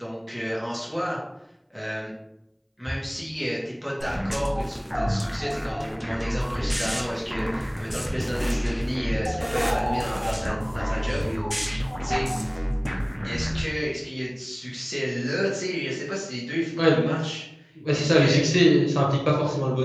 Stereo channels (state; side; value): identical; both; correlation 1.00